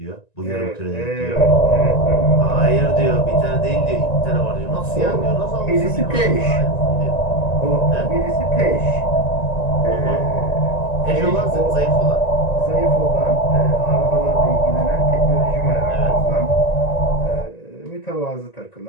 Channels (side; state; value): right; late; 1.9 ms